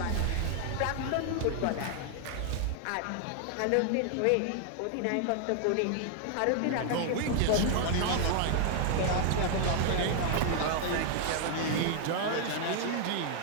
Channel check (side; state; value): both; different; correlation 0.00